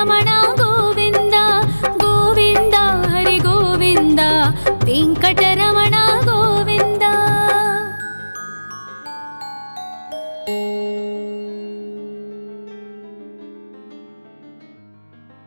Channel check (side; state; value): both; inverted; correlation -1.00